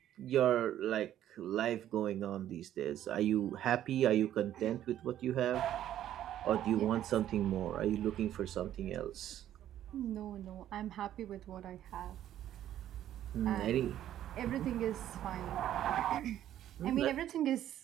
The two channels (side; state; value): left; quieter; 11.8 dB